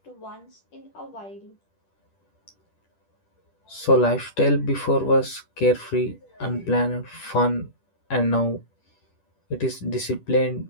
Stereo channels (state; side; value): late; right; 10 ms